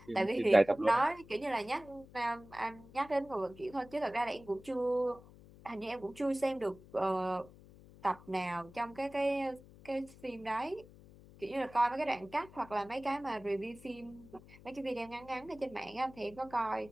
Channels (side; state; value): left; noise; hum, 21 dB below the sound